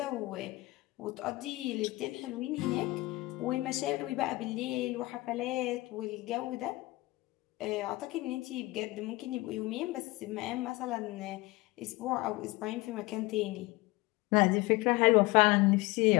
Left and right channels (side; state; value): right; quieter; 21.2 dB